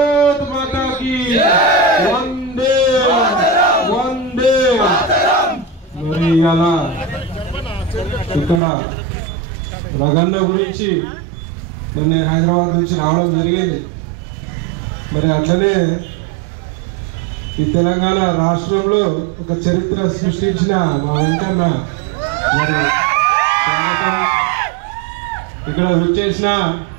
మాతా కీ, వందే వందే. మరి అలా ఇక్కడ రగన్న గురించి మరి నేను హైదరాబాద్ నుంచి రావడం జరిగింది. మరి అట్లనే ఈ తెలంగాణ రాష్ట్రంలో ఒక చరిత్ర సృష్టించిన మా వెంకన్న మరి ఇక్కడ వచ్చేసిన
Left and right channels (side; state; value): left; drops out; at 8.6 s